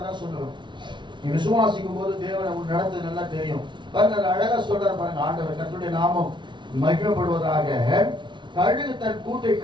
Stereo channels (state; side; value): late; left; 0.23 ms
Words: சொல்லுவேன், நீ விசுவாசிக்கும் போது தேவனை உன் நடத்து நல்லா தெரியும். பாருங்க அழகா சொல்றாரு பாருங்க ஆண்டவர், கர்த்தருடைய நாமம் மகிமைப்படுவதாக. கழுகு தன் கூட்டை